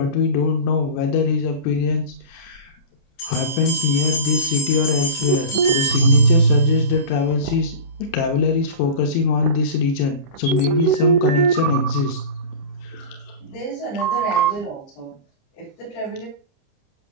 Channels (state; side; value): late; right; 30 ms